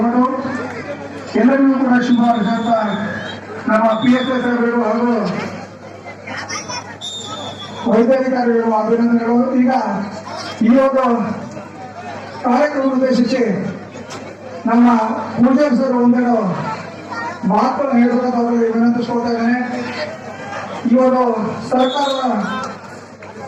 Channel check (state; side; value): identical; both; correlation 1.00